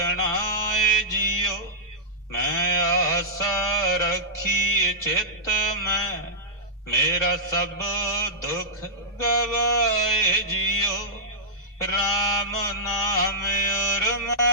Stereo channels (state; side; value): normal; both; correlation -0.12